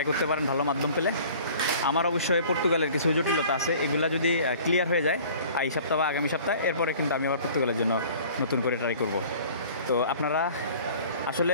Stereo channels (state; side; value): inverted; both; correlation -0.48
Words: করতে পারেন ভালো মাধ্যম পেলে। আমার অবশ্যই পর্তুগালের কিছু জটিলতা আছে, এগুলা যদি ক্লিয়ার হয়ে যায় এই সপ্তাহ বা আগামী সপ্তাহে, এরপরে কিন্তু আমি আবার পর্তুগালের জন্য নতুন করে ট্রাই করব। তো আপনারা